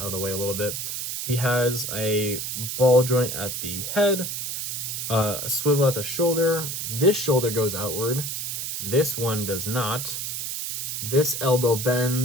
of the way a little bit. He has a ball joint at the head, a swivel at the shoulder. This shoulder goes outward. This one does not. This elbow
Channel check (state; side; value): noise; right; hiss, 4 dB below the sound